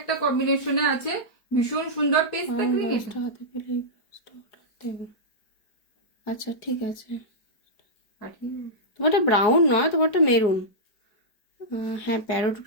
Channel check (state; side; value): late; right; 4.8 ms